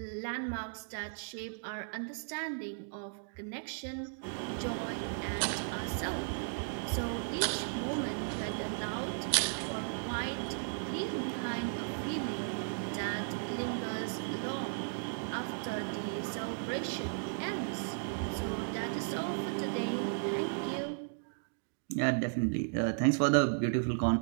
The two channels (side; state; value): left; silent; digital silence